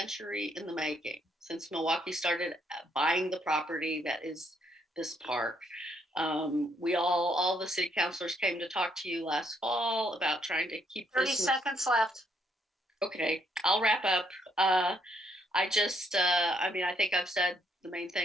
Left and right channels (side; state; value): both; normal; correlation 0.71